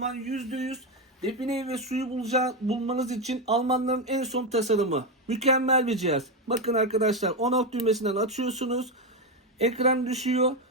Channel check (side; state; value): both; normal; correlation 0.10